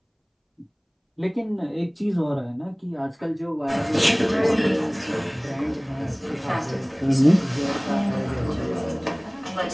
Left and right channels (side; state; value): both; identical; correlation 1.00